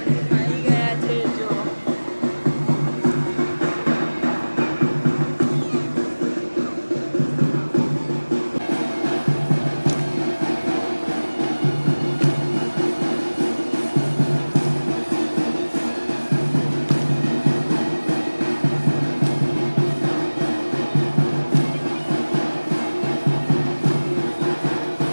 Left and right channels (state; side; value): inverted; both; correlation -1.00